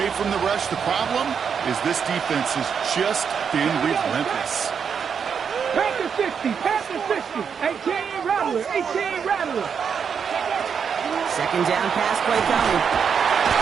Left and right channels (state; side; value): quieter; left; 6.8 dB